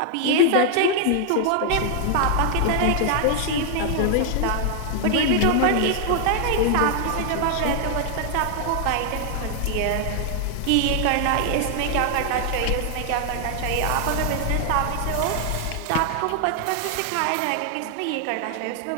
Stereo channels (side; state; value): both; different; correlation 0.00